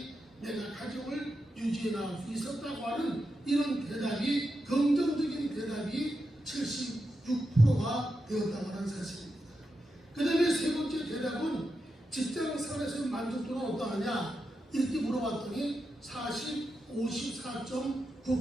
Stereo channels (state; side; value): normal; both; correlation 0.88